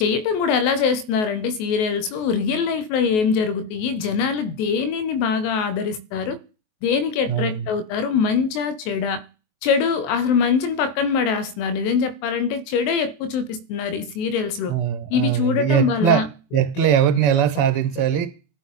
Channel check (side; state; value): right; late; 23 ms